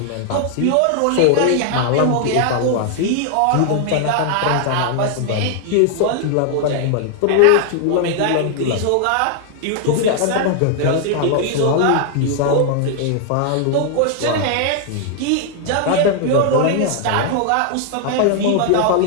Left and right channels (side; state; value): both; different; correlation 0.00